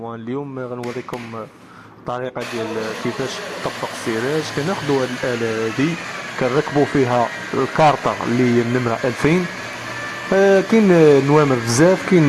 اليوم غنوريكم طريقة ديال كيفاش تطبق السيراج. كناخدو هاد الآلة هادي كنركبو فيها الكارطة اللي هي النمرة 2000. كاين نوامر بزاف،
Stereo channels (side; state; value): both; identical; correlation 1.00